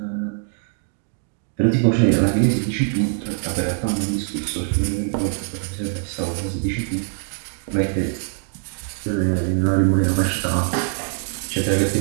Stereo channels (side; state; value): left; silent; 60 dB below the other